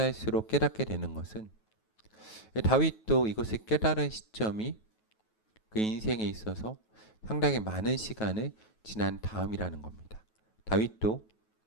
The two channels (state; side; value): late; right; 9.3 ms